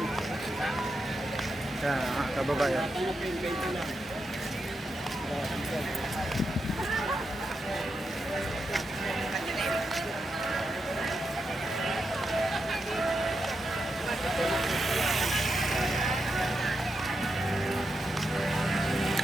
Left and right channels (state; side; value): normal; both; correlation 0.85